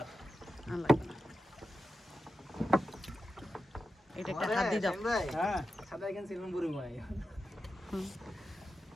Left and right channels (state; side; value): normal; both; correlation 0.90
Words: আর লাগবে না এটা একটা হাত দিয়ে দাও হ্যাঁ সাদা এখানে সিলন বুড়ি মাই